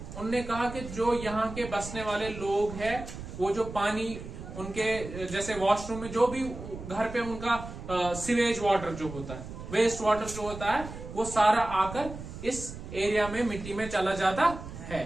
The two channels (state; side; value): noise; right; rumble, 11 dB below the sound